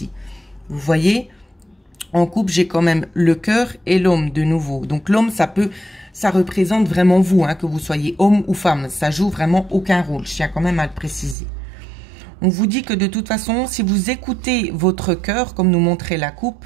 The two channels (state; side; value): drops out; left; at 11.4 s